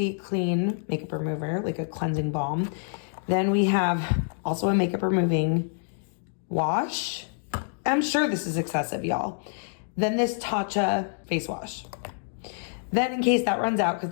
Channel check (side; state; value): right; silent; digital silence